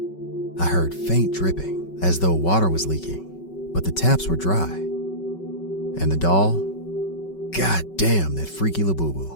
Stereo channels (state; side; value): late; right; 5.3 ms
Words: I heard faint dripping, as though water was leaking, but the taps were dry. And the doll? God damn that freaky